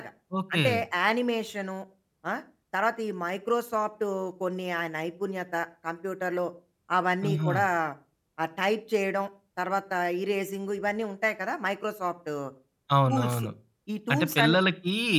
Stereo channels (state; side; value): identical; both; correlation 1.00